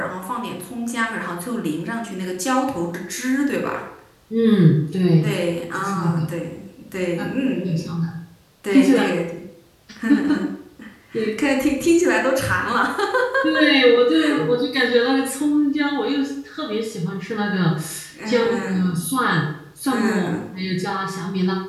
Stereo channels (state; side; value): identical; both; correlation 1.00